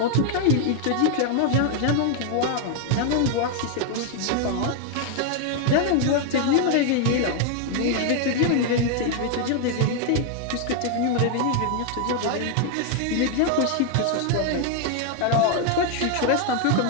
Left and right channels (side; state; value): both; different; correlation 0.00